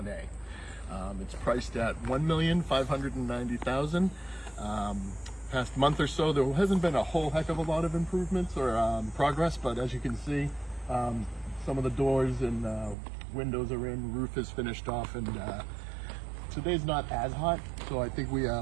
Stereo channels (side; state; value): left; drops out; at 13.0 s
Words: It's priced at $1,590,000. Past month or so, there hasn't been a whole heck of a lot of improvements or progress, but as you can see, some of the doors and windows are in, roof is finished off, and today's not as hot, so I think we